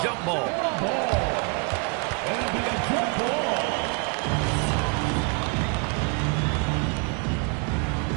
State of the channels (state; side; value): quieter; left; 32.9 dB